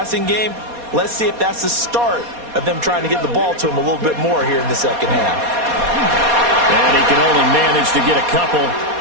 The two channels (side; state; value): left; late; 4.2 ms